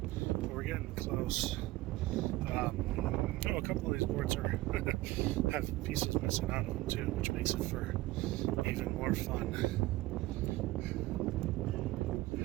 We're getting close. A couple of these boards have pieces missing out of them too, which makes it for even more fun.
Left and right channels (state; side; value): quieter; left; 18.6 dB